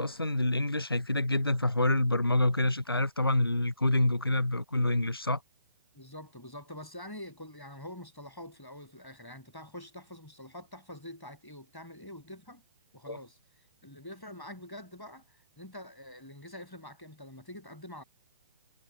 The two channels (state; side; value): inverted; both; correlation -0.82